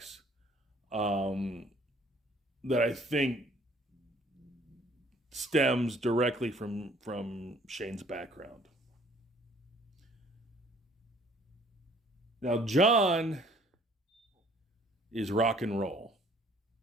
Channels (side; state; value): both; normal; correlation 0.58